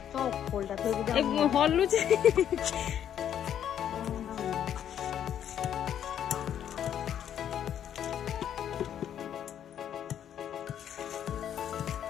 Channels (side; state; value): right; quieter; 9.8 dB